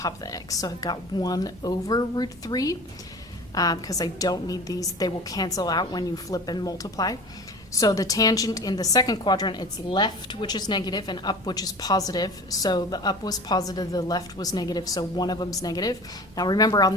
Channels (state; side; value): normal; both; correlation 0.38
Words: of the x. So I've got 1 over root 3, because I don't need these. They will cancel out when you flip and multiply. So the tangent in the second quadrant, it's left, which is negative, and up, which is positive. So the up was positive, the left was negative, so one of them's negative. Now remember, on